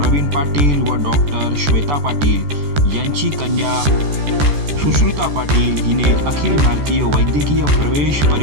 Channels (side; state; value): left; late; 14 ms